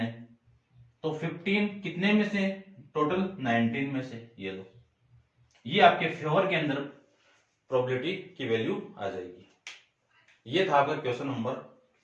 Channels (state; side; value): identical; both; correlation 1.00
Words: तो 15 कितने में से, टोटल 19 में से, ये लो, ये आपके फेवर के अंदर प्रोबेबिलिटी की वैल्यू आ जाएगी। ये था आपका क्वेश्चन नंबर